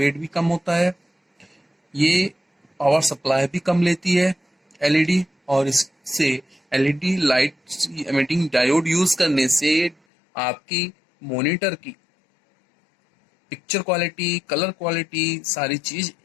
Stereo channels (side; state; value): right; drops out; at 10.0 s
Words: भी कम होता है। ये पावर सप्लाई भी कम लेती है एलईडी, और इससे LED light emitting diode use करने से आपकी मॉनिटर की पिक्चर क्वालिटी, कलर क्वालिटी, सारी चीज